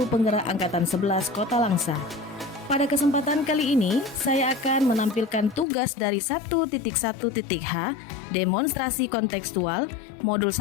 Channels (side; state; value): right; drops out; at 5.7 s